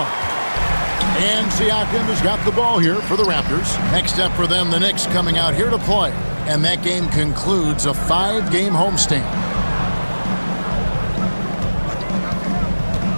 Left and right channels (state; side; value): inverted; both; correlation -1.00